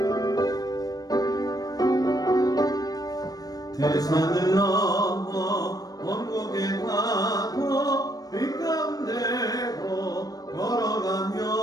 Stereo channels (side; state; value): right; late; 0.18 ms